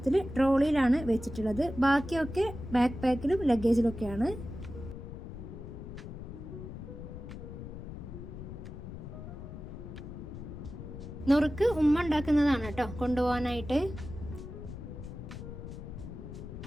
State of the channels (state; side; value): noise; left; rumble, 10 dB below the sound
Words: ട്രോളിയിലാണ് വെച്ചിട്ടുള്ളത്. ബാക്കിയൊക്കെ ബാക്ക് പാക്കിലും ലഗേജിലൊക്കെയാണ്. നുറുക്ക് ഉമ്മ ഉണ്ടാക്കുന്നതാണ് കേട്ടോ കൊണ്ടുപോകാനായിട്ട്.